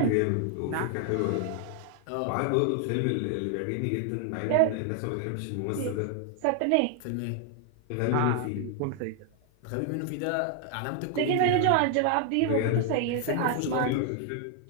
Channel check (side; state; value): both; different; correlation 0.00